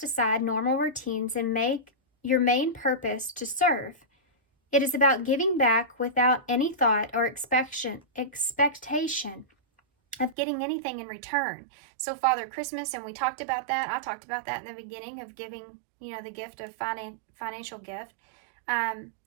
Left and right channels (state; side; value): drops out; left; at 10.4 s